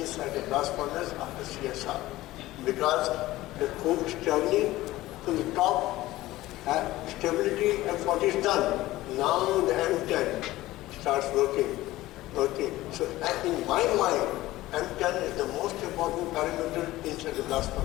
the blast furnace after CSR. Because the coke is traveling to the top, stability F40 is done. Now the M10 starts working. So in my mind, M10 is the most important parameter inside the blast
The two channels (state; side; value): quieter; right; 17.0 dB